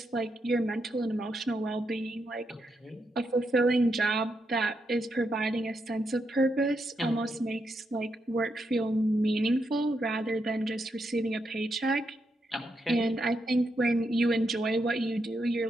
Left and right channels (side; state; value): both; normal; correlation 0.82